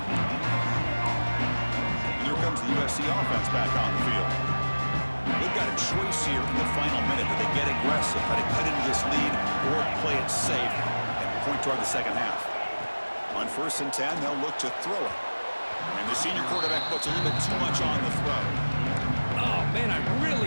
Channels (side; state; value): both; inverted; correlation -1.00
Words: And here comes the USC offense back on the field. They've got a choice here in the final minute. Do they get aggressive, try to cut into this lead, or play it safe and point toward the second half? On 1st and 10, they'll look to throw it. And the senior quarterback puts a little bit too much on the throw. Oh, man, I